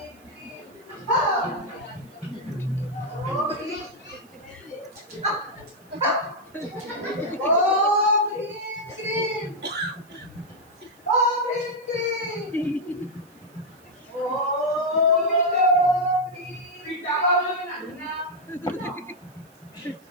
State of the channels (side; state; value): right; noise; hiss, 30 dB below the sound